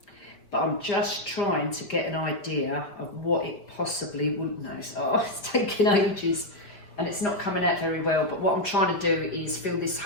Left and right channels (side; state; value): right; late; 5.1 ms